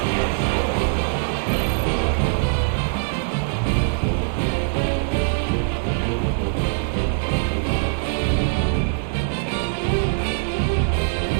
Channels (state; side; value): silent; left; 64 dB below the other